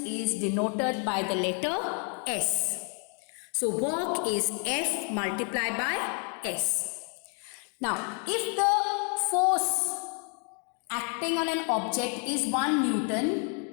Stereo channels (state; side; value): quieter; right; 38.9 dB